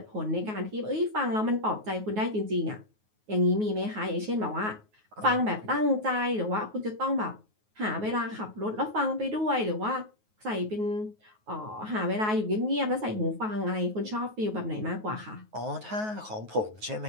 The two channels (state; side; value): late; left; 9.4 ms